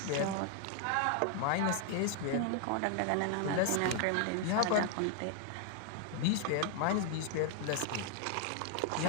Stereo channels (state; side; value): different; both; correlation 0.00